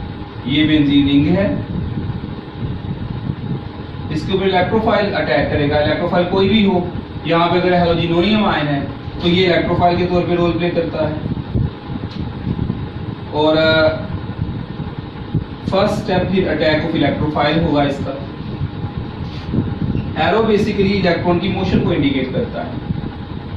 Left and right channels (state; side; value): identical; both; correlation 1.00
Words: ये बेंजीन रिंग है, इसके ऊपर इलेक्ट्रोफाइल अटैक करेगा। इलेक्ट्रोफाइल कोई भी हो, यहाँ पे अगर हेलोजिनोनियम आयन है तो ये इलेक्ट्रोफाइल के तौर पे रोल प्ले करता है। और फर्स्ट स्टेप फिर अटैक ऑफ इलेक्ट्रोफाइल होगा। इसका एरो बेसिकली इलेक्ट्रॉन की मोशन को इंडिकेट करता है।